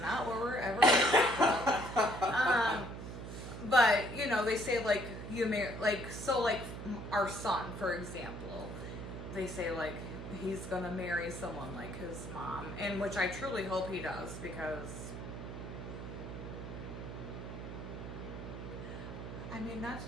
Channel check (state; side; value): noise; right; hum, 8 dB below the sound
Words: not what we're ever going to talk about. But, you know, they say, like, you marry, like, so, like, our son, for example, they say, like, he's going to marry someone like his mom, and which I truly hope he does, because, I mean, not